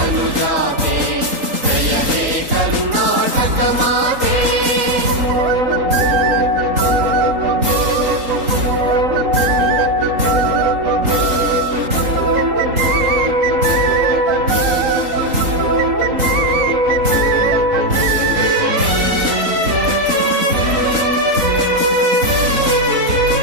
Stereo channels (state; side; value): late; left; 3.8 ms